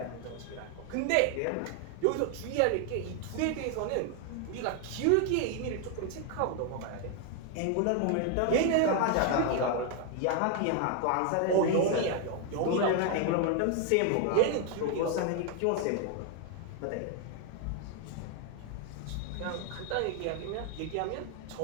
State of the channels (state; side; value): different; both; correlation 0.01